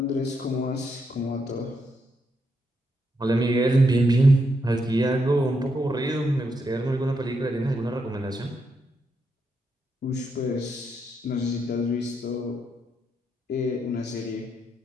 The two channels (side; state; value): both; normal; correlation 0.80